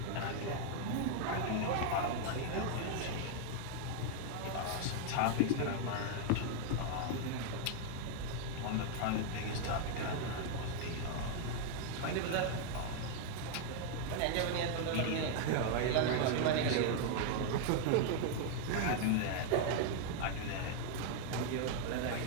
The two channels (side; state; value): both; different; correlation 0.00